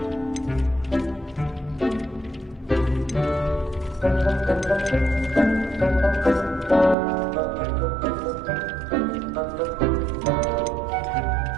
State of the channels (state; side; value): drops out; left; at 7.0 s